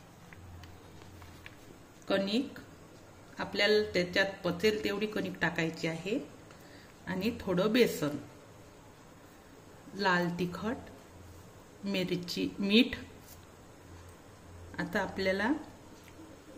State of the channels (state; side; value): identical; both; correlation 1.00